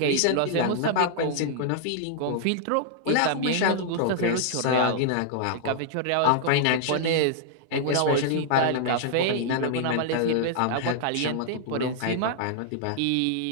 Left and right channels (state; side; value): different; both; correlation -0.01